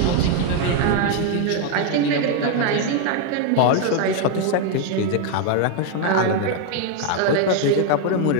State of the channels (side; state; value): both; different; correlation 0.01